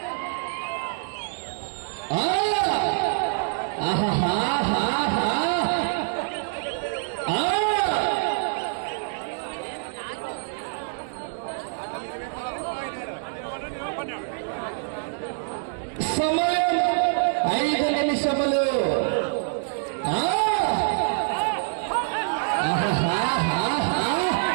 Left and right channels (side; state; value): left; silent; digital silence